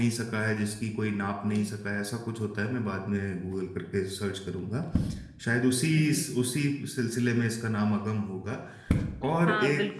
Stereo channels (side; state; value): both; identical; correlation 1.00